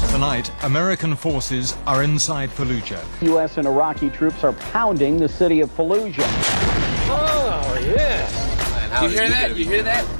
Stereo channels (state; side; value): inverted; both; correlation -1.00